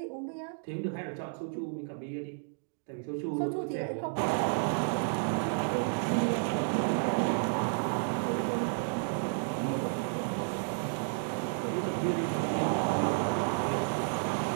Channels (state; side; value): silent; left; digital silence